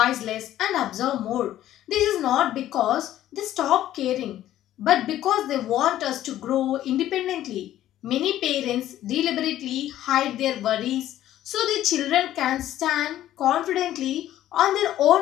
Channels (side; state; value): right; quieter; 13.0 dB